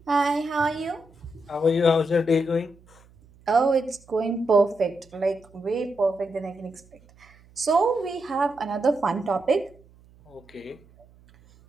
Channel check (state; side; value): noise; right; hum, 27 dB below the sound